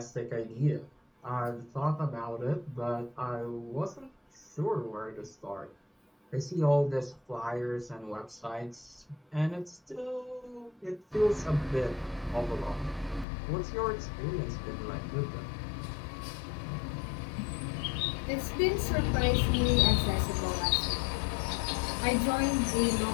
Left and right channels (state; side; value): drops out; right; at 13.2 s